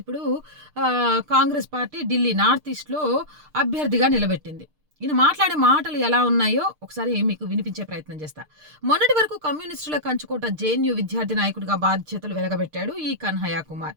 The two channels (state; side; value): late; left; 6.6 ms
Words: ఇప్పుడు కాంగ్రెస్ పార్టీ ఢిల్లీ నార్త్ ఈస్ట్లో అభ్యర్థిగా నిలబెట్టింది. ఈయన మాట్లాడే మాటలు ఎలా ఉన్నాయో ఒకసారి మీకు వినిపించే ప్రయత్నం చేస్తా. మొన్నటి వరకు కమ్యూనిస్టుల కంచుకోట జేఎన్యూ విద్యార్థి నాయకుడిగా బాధ్యతలు వెలగబెట్టాడు ఈ కన్హయ్య కుమార్.